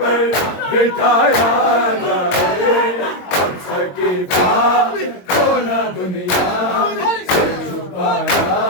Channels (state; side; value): late; right; 22 ms